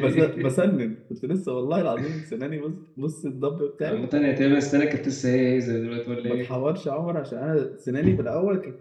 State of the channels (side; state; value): both; identical; correlation 1.00